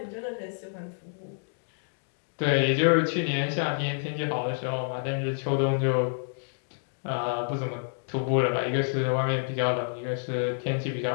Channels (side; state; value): right; silent; digital silence